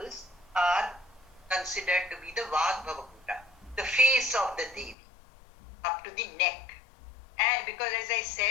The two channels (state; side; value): drops out; right; at 5.0 s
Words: are considered to be the Vag Bhava Kuta, the face of the Devi, up to the neck. And because as I